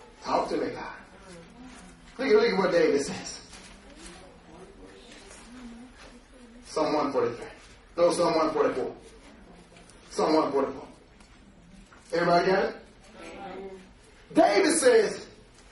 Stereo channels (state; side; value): identical; both; correlation 1.00